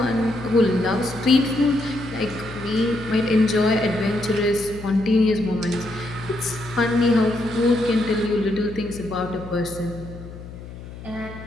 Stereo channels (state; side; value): noise; left; hum, 14 dB below the sound